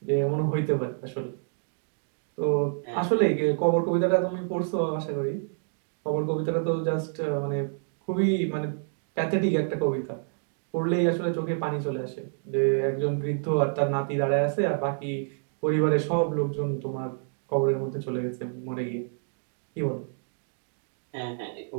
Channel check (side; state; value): left; silent; digital silence